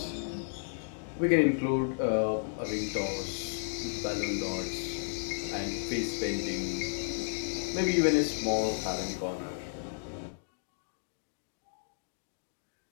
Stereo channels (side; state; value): right; silent; digital silence